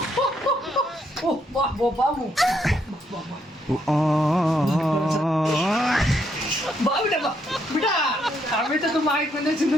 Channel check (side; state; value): both; normal; correlation 0.75